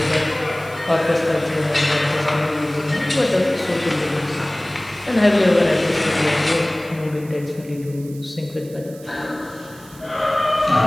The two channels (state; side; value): noise; right; hiss, 22 dB below the sound